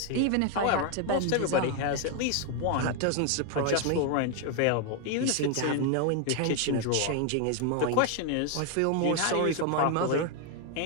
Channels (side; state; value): both; different; correlation 0.01